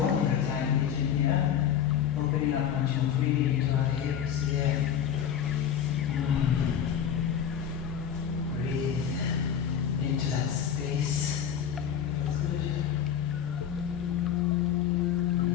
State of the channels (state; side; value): quieter; right; 8.8 dB